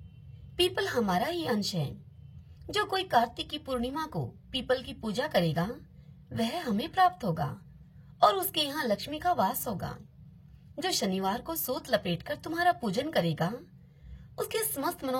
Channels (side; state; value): both; identical; correlation 1.00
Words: पीपल हमारा ही अंश है। जो कोई कार्तिक की पूर्णिमा को पीपल की पूजा करेगा वह हमें प्राप्त होगा और उसके यहाँ लक्ष्मी का वास होगा। जो शनिवार को सूत लपेटकर तुम्हारा पूजन करेगा उसके समस्त